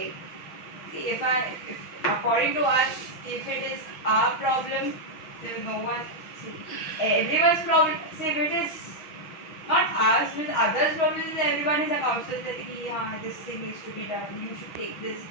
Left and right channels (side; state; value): right; late; 6.2 ms